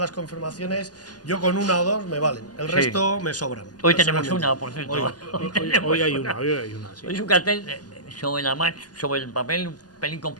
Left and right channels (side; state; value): right; late; 0.69 ms